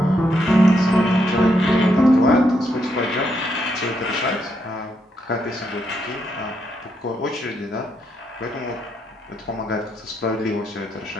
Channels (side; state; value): both; normal; correlation 0.78